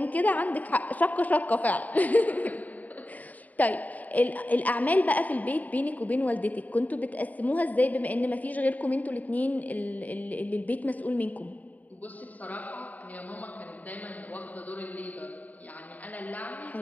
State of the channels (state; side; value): late; right; 0.076 ms